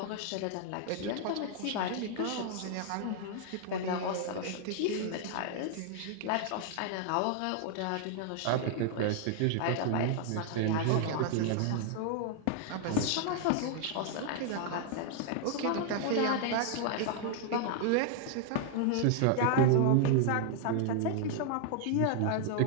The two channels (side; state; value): both; different; correlation 0.00